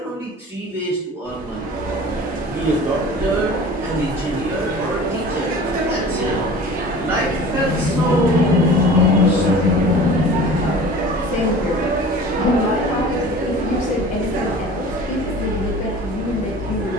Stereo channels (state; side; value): normal; both; correlation 0.41